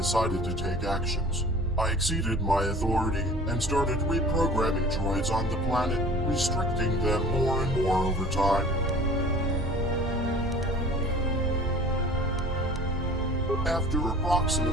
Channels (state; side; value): normal; both; correlation 0.44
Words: to take actions. I exceeded my authority and started reprogramming droids on the planet, restricting them more and more over time. After